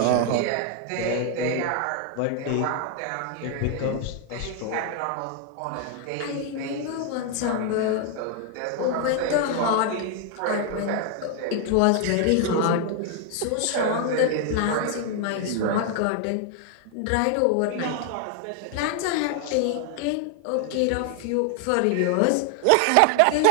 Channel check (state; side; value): different; both; correlation 0.00